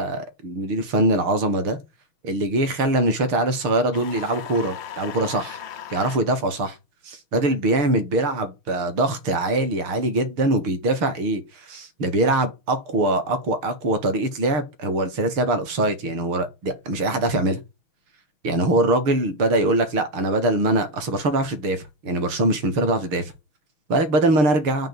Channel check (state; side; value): late; left; 6.6 ms